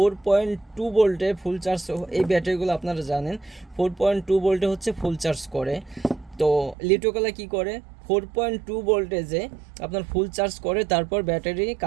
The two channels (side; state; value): left; drops out; at 6.8 s